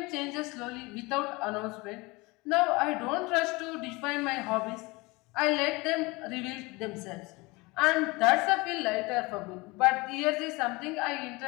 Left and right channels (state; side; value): quieter; right; 24.2 dB